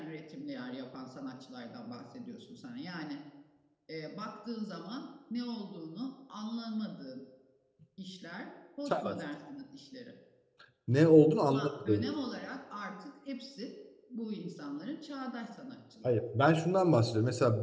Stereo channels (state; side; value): identical; both; correlation 1.00